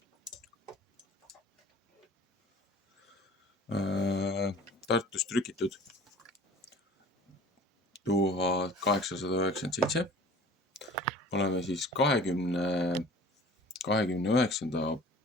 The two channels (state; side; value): normal; both; correlation 0.45